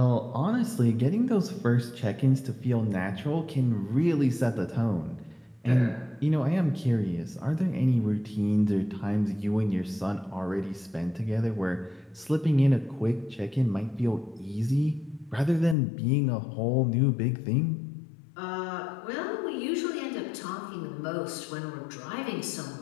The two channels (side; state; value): right; drops out; at 15.8 s